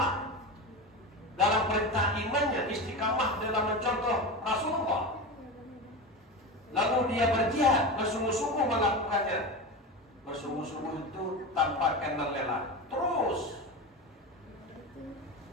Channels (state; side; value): normal; both; correlation 0.24